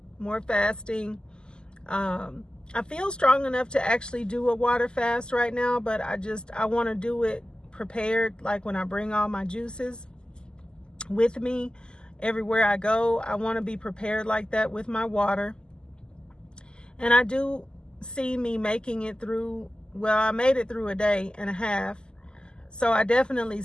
fasting. I feel strong enough to actually do a water fast right now, but I want to do it prepared, like when I bring all my juices with me everywhere I go. I want to be prepared like that with my water. And I do see me making it through, well, I made it through a day and a half. So I definitely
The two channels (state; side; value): late; right; 0.047 ms